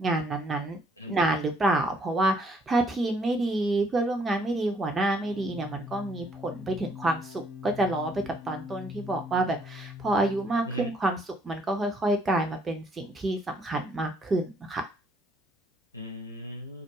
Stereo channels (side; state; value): both; normal; correlation 0.66